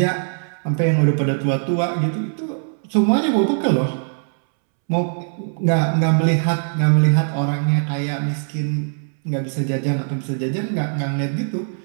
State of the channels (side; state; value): left; silent; 65 dB below the other